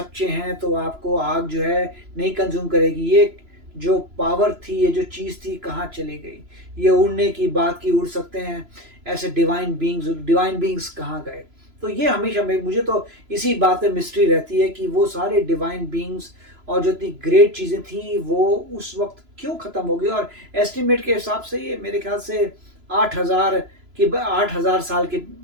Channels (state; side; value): late; left; 3.0 ms